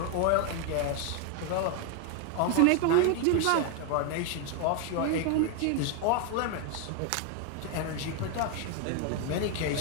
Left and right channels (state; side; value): different; both; correlation 0.01